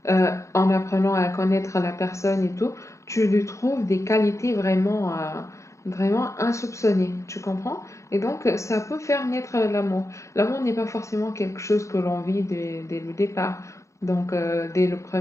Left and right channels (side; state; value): right; late; 0.14 ms